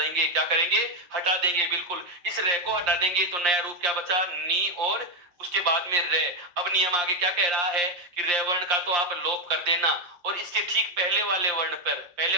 क्या करेंगे? हटा देंगे। बिल्कुल, इस रे को हटा देंगे तो नया रूप क्या बचा? नी, और उसके बाद में रे। अब नियम आगे क्या कह रहा है, कि रे वर्ण का तो आप लोप कर देना, और इसके ठीक पहले वाले वर्ण पर, पहले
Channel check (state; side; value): late; left; 5.7 ms